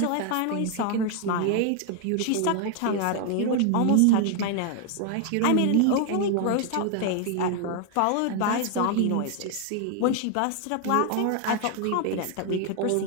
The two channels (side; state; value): both; different; correlation 0.00